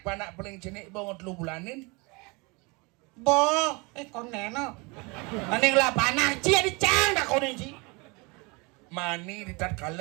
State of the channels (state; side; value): quieter; left; 27.9 dB